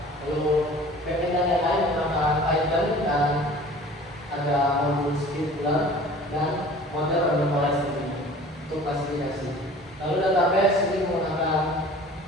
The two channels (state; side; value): normal; both; correlation 0.45